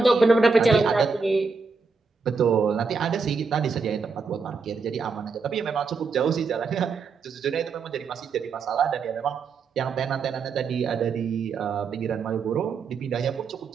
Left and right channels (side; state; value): left; quieter; 4.9 dB